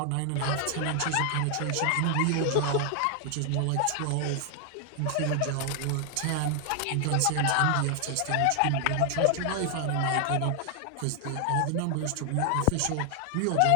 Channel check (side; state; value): both; different; correlation 0.00